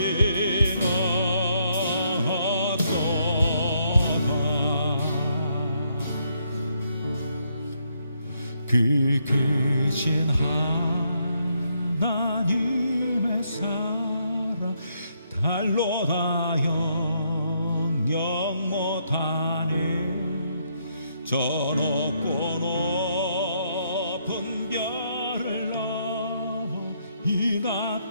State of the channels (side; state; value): both; inverted; correlation -0.74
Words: 얻도다 그 크신 하나님의 사랑 달로 다 영영 못하네 저 높고 높은 별을 넘어 이